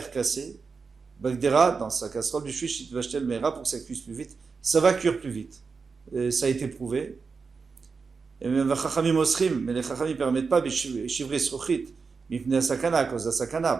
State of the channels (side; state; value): left; quieter; 5.0 dB